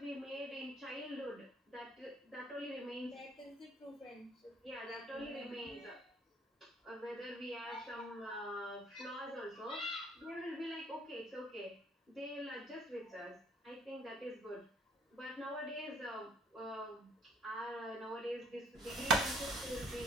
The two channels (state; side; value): normal; both; correlation 0.60